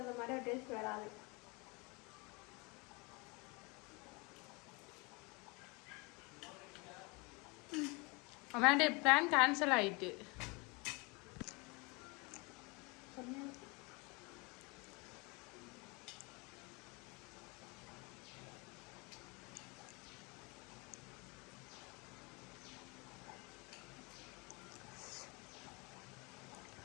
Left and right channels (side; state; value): right; quieter; 28.3 dB